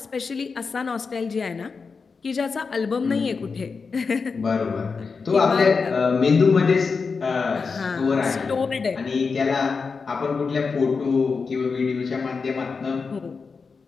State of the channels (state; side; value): quieter; right; 4.9 dB